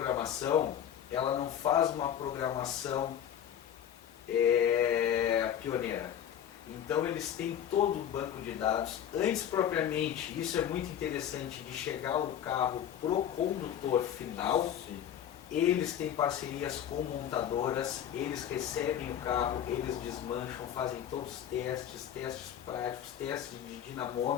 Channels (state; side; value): quieter; right; 9.9 dB